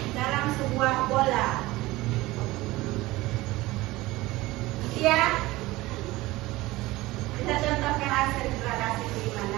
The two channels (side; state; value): left; quieter; 19.2 dB